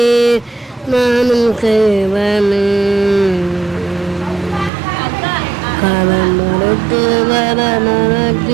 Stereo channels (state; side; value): drops out; left; at 4.7 s